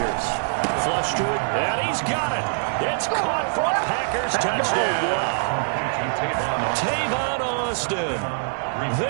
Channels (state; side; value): silent; left; digital silence